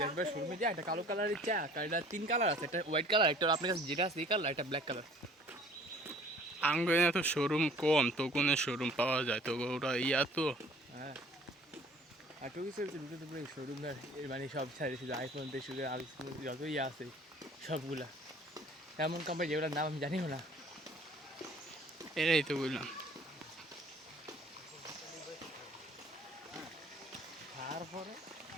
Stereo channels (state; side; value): normal; both; correlation 0.52